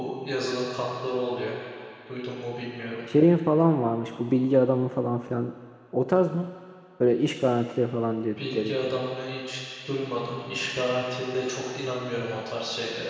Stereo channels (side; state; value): both; identical; correlation 1.00